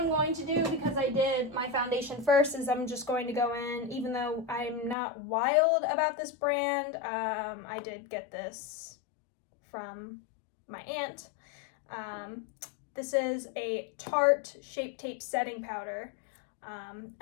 going to do, because I did my foundation first, is I'm just going to go in, even though I'm not wild about this brand. I did get this from my aunt. This is a Tarte Shape Tape Setting Powder. And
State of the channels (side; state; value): right; drops out; at 5.0 s